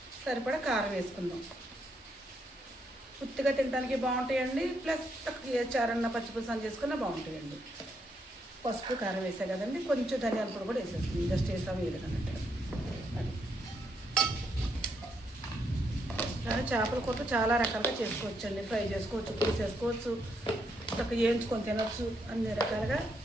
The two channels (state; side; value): normal; both; correlation 0.77